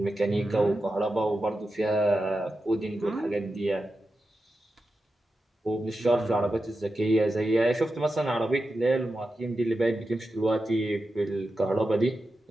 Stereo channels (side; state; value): both; normal; correlation 0.90